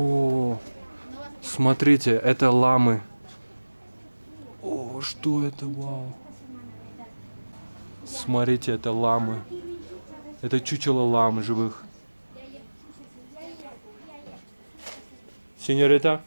смотрите, это ламы. О, что это, вау. Смотрите, это ламы. Это чучело лам живых. Señorita,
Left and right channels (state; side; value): inverted; both; correlation -1.00